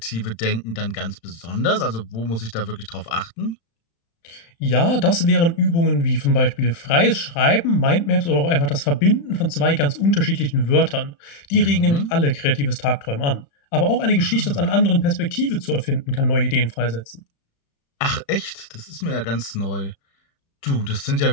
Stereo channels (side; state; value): right; late; 35 ms